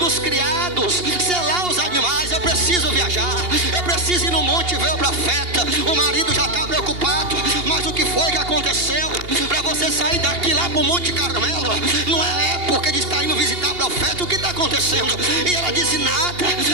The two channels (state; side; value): late; left; 2.8 ms